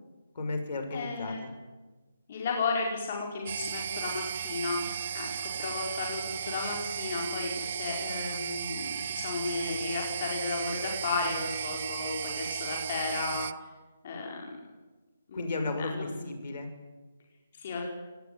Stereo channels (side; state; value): both; inverted; correlation -0.67